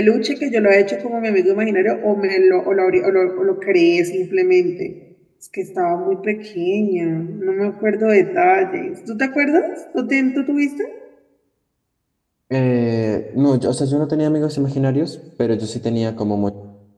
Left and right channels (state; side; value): identical; both; correlation 1.00